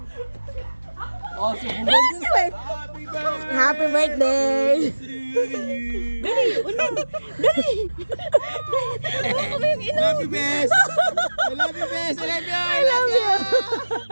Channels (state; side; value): inverted; both; correlation -1.00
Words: Oh, subukan. Happy birthday! Happy birthday! Dali, unang! Dali! Hawakan mo yung ino! Love you, best! I love you, best! I love you! I love you!